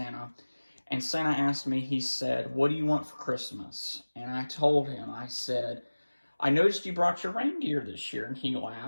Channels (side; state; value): both; inverted; correlation -1.00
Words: and Santa asked me, he said, "What do you want for Christmas?" And I told him, I said, "I noticed you brought your reindeer this year," and he